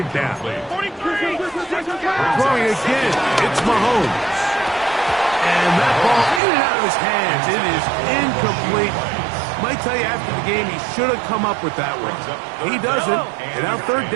down. Throwing again. It's Mahomes. And that ball in and out of his hands. It is incomplete. Might tell you after the game he should have come up with that one. He doesn't. And now 3rd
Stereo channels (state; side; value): drops out; left; at 6.4 s